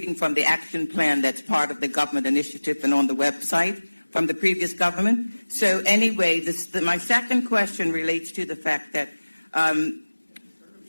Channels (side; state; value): both; inverted; correlation -1.00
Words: from the action plan that's part of the government initiative and on the website from the previous government. So anyway, my second question relates to the fact that